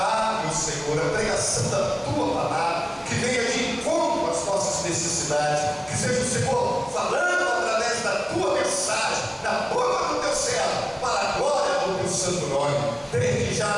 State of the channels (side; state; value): both; identical; correlation 1.00